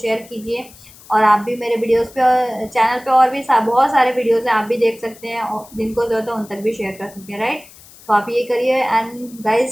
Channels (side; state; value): left; noise; hiss, 22 dB below the sound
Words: कीजिए, और आप भी मेरे वीडियोस पे, चैनल पे और भी बहुत सारे वीडियोस हैं, आप भी देख सकते हैं, और जिनको ज़रूरत है उन तक भी शेयर कर सकते हैं, राइट। तो आप ये करिए, and